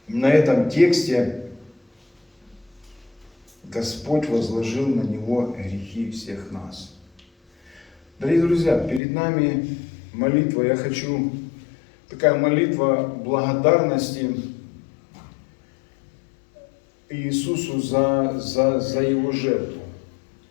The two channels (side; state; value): right; drops out; at 9.0 s